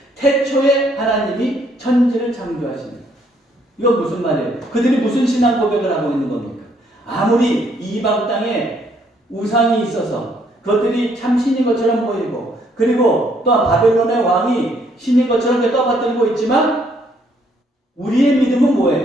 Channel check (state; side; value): normal; both; correlation 0.68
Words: 태초에 하나님이 천지를 창조하십니다. 이건 무슨 말이에요? 그들이 무슨 신앙 고백을 하고 있는 겁니까? 아무리 이방 땅에 우상이 있어서 그것들이 참 신인 것처럼 보이고, 그리고 또 바벨론의 왕이 신인 것처럼 떠받들고 있지만 우리의 믿음은